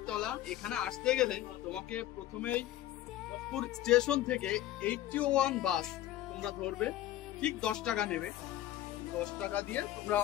এখানে আসতে গেলে তোমাকে প্রথমেই ভোজপুর স্টেশন থেকে 81 বাস তোমরা ধরবে, ঠিক 10 টাকা নেবে। 10 টাকা দিয়ে তোমরা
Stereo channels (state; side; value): quieter; right; 13.7 dB